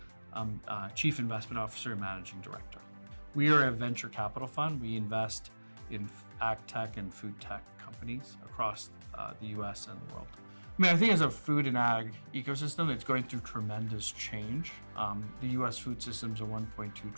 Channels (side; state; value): both; inverted; correlation -1.00